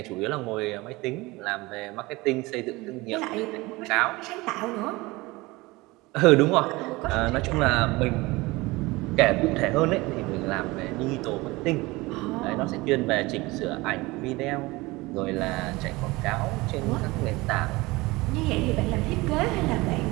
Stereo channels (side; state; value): left; quieter; 21.9 dB